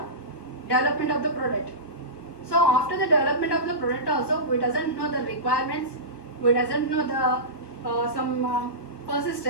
development of the product. So after the development of the product also, we doesn't know the requirements, we doesn't know the some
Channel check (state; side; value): late; right; 1.2 ms